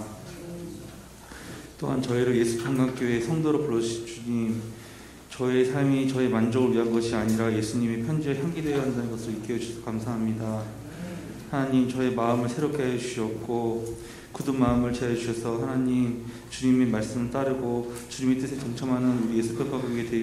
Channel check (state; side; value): identical; both; correlation 1.00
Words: 또한 저희를 예수평강교회 성도로 불러주신 주님, 저의 삶이 저의 만족을 위한 것이 아니라 예수님의 편지에 향기 되어야 한다는 것을 익혀 주셔서 감사합니다. 하나님, 저의 마음을 새롭게 해주시옵고 굳은 마음을 채워주셔서 하나님, 주님의 말씀을 따르고 주님의 뜻에 동참하는 우리 예수평강교회